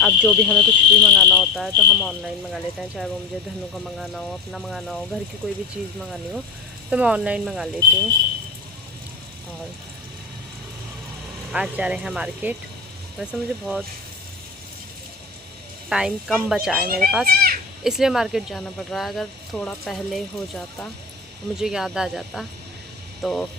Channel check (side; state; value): right; quieter; 4.4 dB